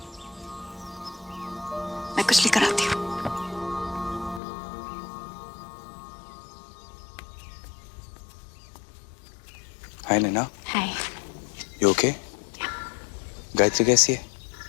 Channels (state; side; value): drops out; right; at 4.4 s